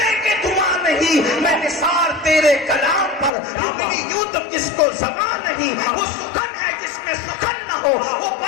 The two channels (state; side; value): drops out; right; at 3.3 s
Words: کہ دھواں نہیں۔ میں نثار تیرے کلام پر، میری یوں تو کس کو زبان نہیں، وہ سخن ہے جس میں سخن نہ ہو، وہ